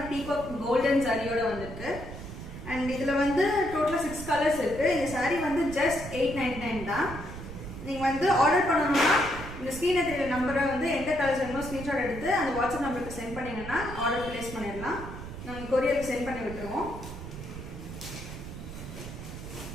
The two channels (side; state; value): right; noise; rumble, 10 dB below the sound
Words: பீகாக் கோல்டன் சாரியோட வந்திருக்கு. and இதுல வந்து டோட்டலா 6 கலர்ஸ் இருக்கு. இந்த சாரி வந்து just 899 தான். நீங்க வந்து ஆர்டர் பண்ணனும்னா இந்த ஸ்கிரீன்ல தெரியற நம்பரை வந்து எந்த கலர்ஸ் வேணுமோ ஸ்கிரீன்ஷாட் எடுத்து அந்த வாட்ஸ்அப் நம்பருக்கு சென்ட் பண்ணீங்கன்னா ஆர்டர் பிளேஸ் பண்ணிடலாம். நாங்கள் கொரியருக்கு சென்ட் பண்ணி விட்டுருவோம்.